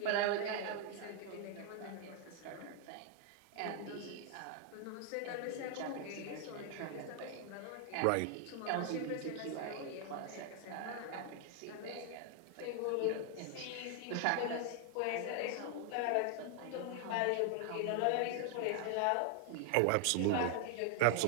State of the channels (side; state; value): both; different; correlation 0.00